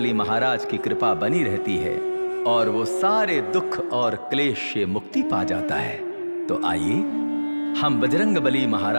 महाराज की कृपा बनी रहती है और वो सारे दुख और क्लेश से मुक्ति पा जाता है। तो आइए हम बजरंगबली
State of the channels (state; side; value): inverted; both; correlation -1.00